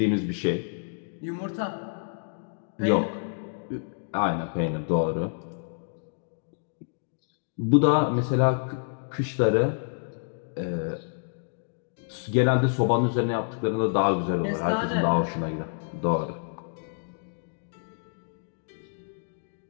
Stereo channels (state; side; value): silent; right; digital silence